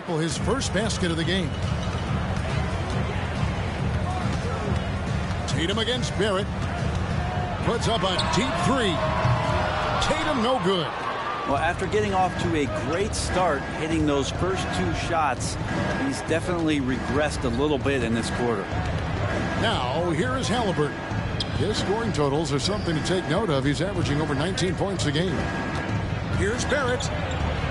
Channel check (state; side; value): identical; both; correlation 1.00